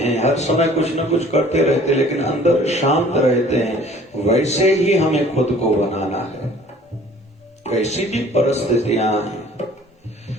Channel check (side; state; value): both; normal; correlation 0.52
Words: हर समय कुछ न कुछ करते रहते लेकिन अंदर शांत रहते हैं। वैसे ही हमें खुद को बनाना है, वैसी भी परिस्थितियां हैं।